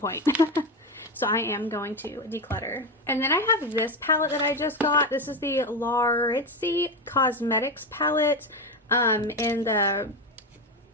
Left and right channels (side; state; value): both; normal; correlation 0.16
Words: So I am going to declutter. And then I have this palette that I just got. This is the Laritzi Cosmetics palette in the